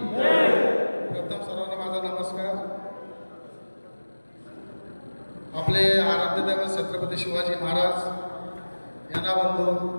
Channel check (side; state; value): both; inverted; correlation -1.00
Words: प्रथम सर्वांना माझा नमस्कार. आपले आराध्य दैवत छत्रपती शिवाजी महाराज यांना वंदून